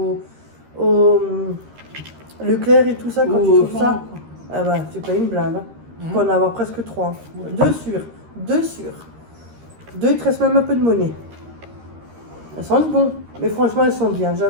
Leclerc et tout ça, quand tu trouves ça, ah bah, tu payes une blinde. Hein. Tu peux en avoir presque 3. 2 sur. 2 sur. 2, il te reste même un peu de monnaie. Elles sentent bon, mais franchement, elles sont bien.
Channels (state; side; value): late; left; 13 ms